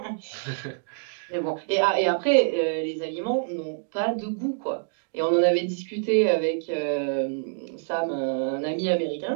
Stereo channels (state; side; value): silent; left; digital silence